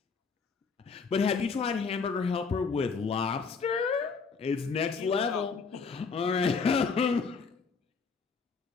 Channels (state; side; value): quieter; right; 5.1 dB